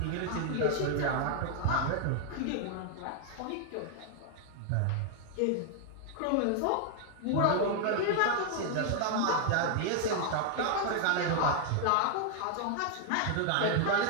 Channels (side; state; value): both; different; correlation 0.00